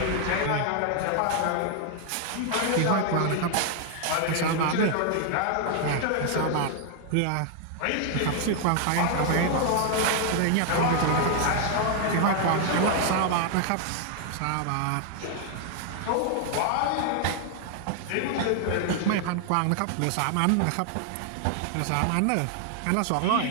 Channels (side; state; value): both; different; correlation 0.00